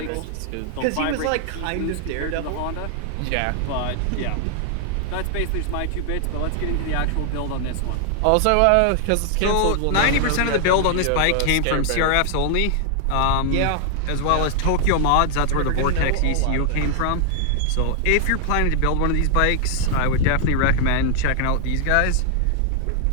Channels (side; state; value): both; different; correlation 0.00